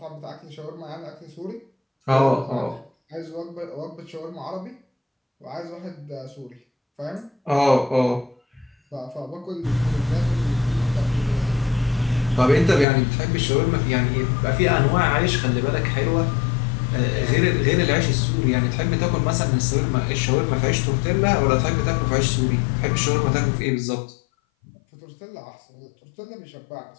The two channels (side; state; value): right; drops out; at 12.9 s